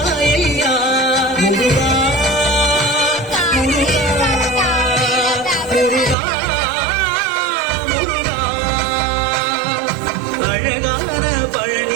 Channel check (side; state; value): left; drops out; at 6.2 s